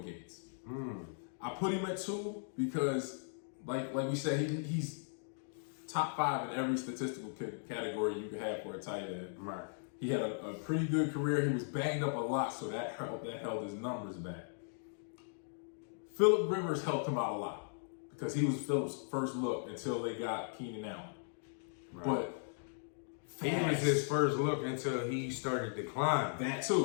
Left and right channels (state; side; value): silent; right; digital silence